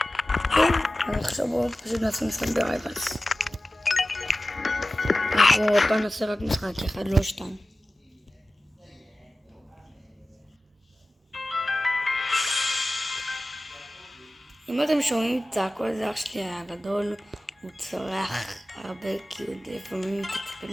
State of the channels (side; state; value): both; normal; correlation 0.96